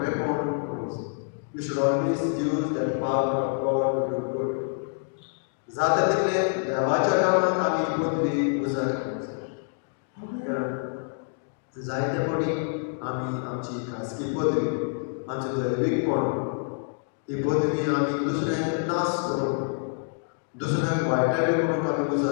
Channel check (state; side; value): silent; right; digital silence